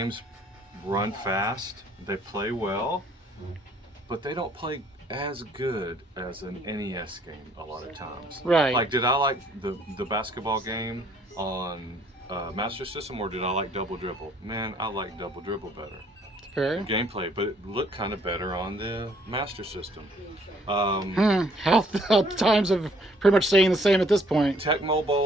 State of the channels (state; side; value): normal; both; correlation 0.63